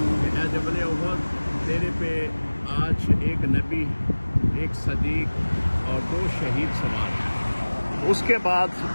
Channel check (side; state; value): both; inverted; correlation -1.00